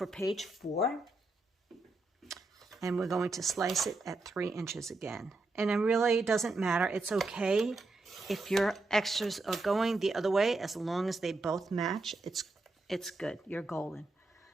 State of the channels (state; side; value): quieter; left; 3.2 dB